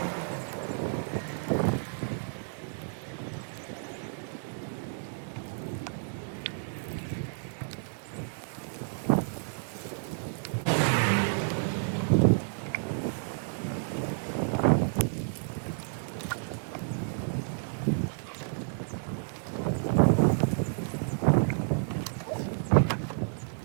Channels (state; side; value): silent; left; digital silence